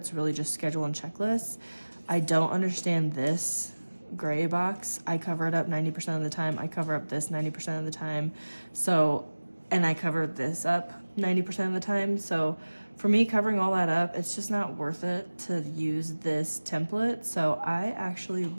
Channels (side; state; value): both; inverted; correlation -1.00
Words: really just schedule and checklists. I don't understand this gray box. I cover it up 90% of the time. I cover up this 90% of the time. And I cover this up 90% of the time. So for me, covering all that up, it's just not worth it to use this template. So I actually